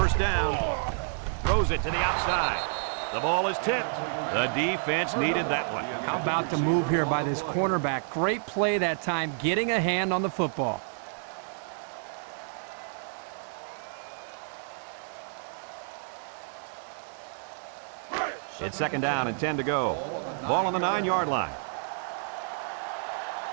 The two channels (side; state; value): left; silent; digital silence